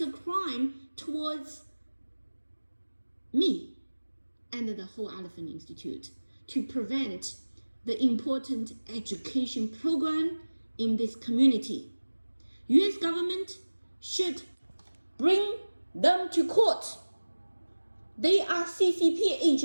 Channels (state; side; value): inverted; both; correlation -1.00